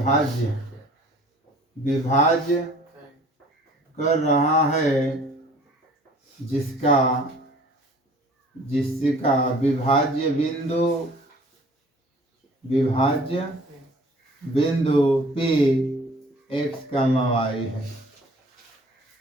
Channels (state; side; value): normal; both; correlation 0.51